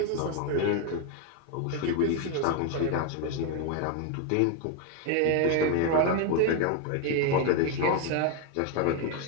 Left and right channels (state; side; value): different; both; correlation 0.01